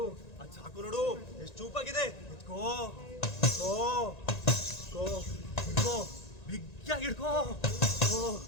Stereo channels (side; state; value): right; late; 1.9 ms